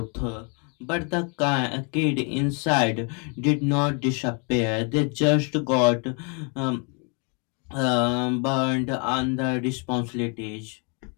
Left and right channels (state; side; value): quieter; right; 36.1 dB